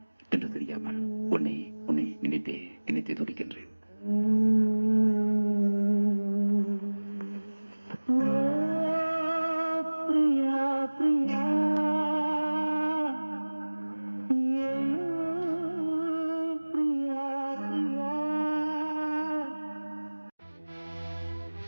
என்று தெரியாமல் உன்னை நினைத்தே துடிக்கின்றேன்.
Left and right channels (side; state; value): both; inverted; correlation -1.00